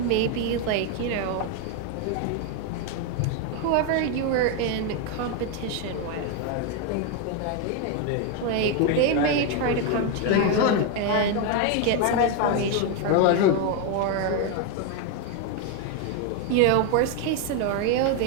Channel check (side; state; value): both; different; correlation 0.01